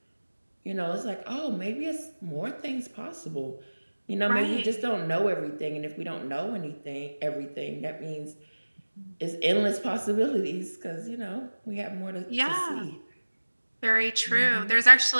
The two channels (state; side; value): inverted; both; correlation -1.00